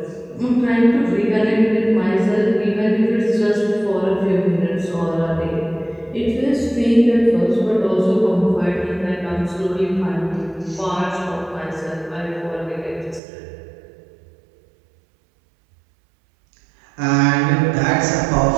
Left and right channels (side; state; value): left; drops out; at 13.2 s